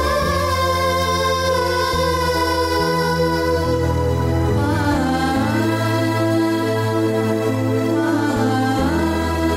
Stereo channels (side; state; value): both; identical; correlation 1.00